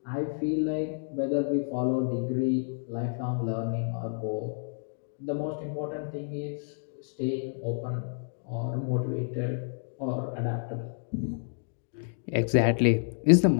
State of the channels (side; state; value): right; silent; digital silence